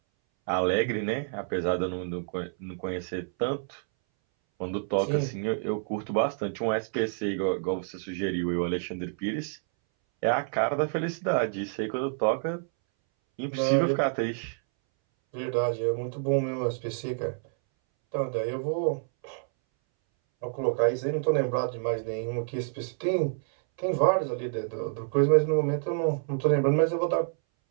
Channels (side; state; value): left; silent; 59 dB below the other